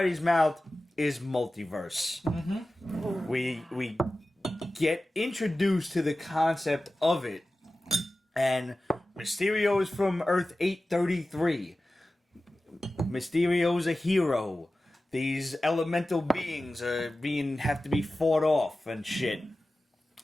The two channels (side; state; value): both; normal; correlation 0.95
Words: mouth is multiverse. We get introduced to the concept of it, and Mysterio is from Earth 833. Mysterio's a hero. These elemental beings have to be fought off and shit.